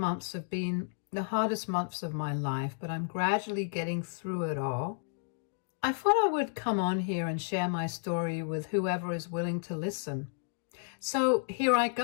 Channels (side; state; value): right; silent; digital silence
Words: have been the hardest months of my life, but I'm gradually getting through it all. I thought I would come on here and share my story with whoever is willing to listen. So here I